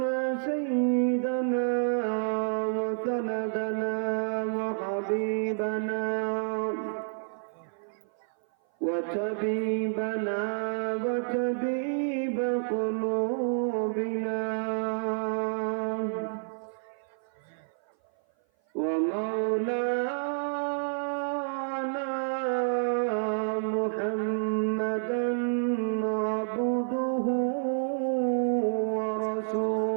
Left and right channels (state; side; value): silent; left; 56 dB below the other